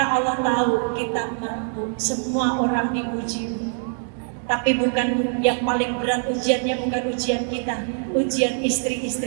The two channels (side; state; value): left; silent; digital silence